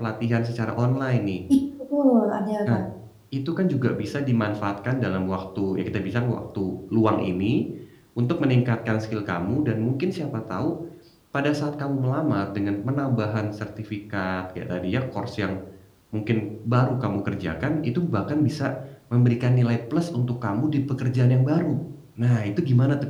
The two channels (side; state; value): both; identical; correlation 1.00